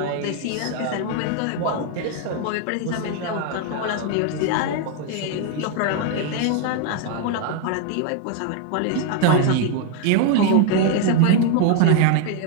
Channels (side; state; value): both; different; correlation 0.01